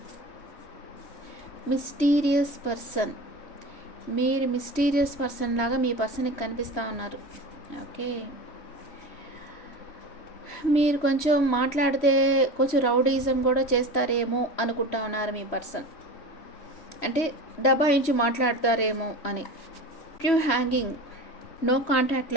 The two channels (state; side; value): late; right; 3.1 ms